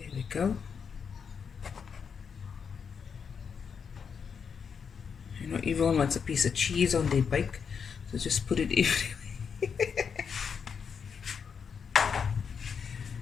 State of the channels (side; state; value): right; quieter; 6.5 dB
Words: we go. You know, everyone wants a piece of cheese on their bake, so just put it everywhere.